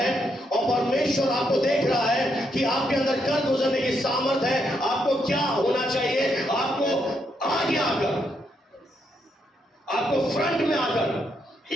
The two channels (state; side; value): normal; both; correlation 0.78